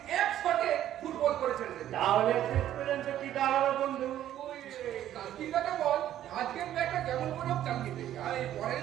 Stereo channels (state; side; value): quieter; left; 11.9 dB